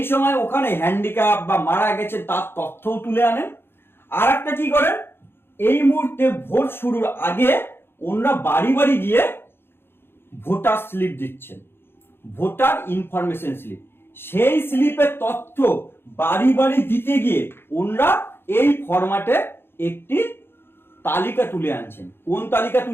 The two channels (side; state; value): right; late; 0.11 ms